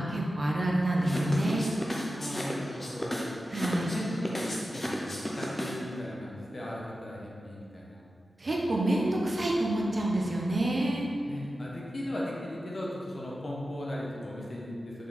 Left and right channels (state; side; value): normal; both; correlation 0.92